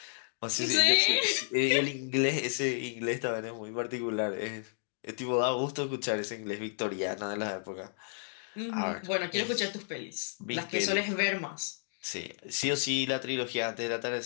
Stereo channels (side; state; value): right; silent; digital silence